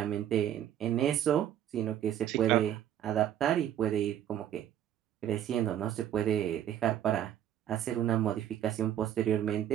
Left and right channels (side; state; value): left; quieter; 10.8 dB